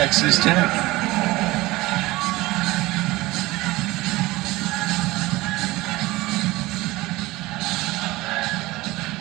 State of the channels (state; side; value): quieter; left; 19.7 dB